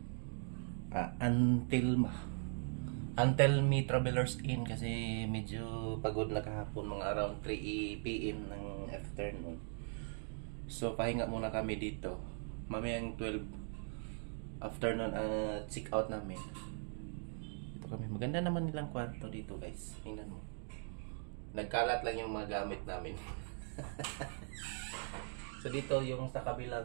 Antelmi Travelers Inn kasi medyo pagod na kahapon, mga around 3 PM ng afternoon. So pahinga muna kami dito. Mamayang 12 afternoon check out namin. Dito kami. Maganda naman nilang kwarto dito guys. Tingnan mo. Nagkalat lang yung mga gamit namin. So dito yung sa kabilang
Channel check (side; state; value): left; silent; 51 dB below the other